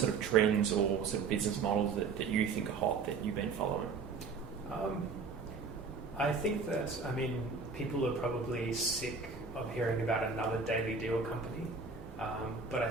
of trends or sort of business models that you think are hot that you've been following? I think that, people are probably sick of hearing about another daily deal company, but I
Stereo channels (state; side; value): quieter; left; 4.8 dB